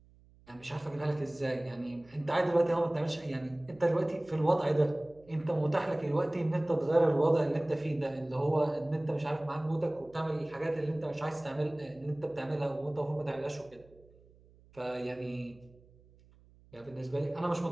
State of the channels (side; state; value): right; noise; hum, 27 dB below the sound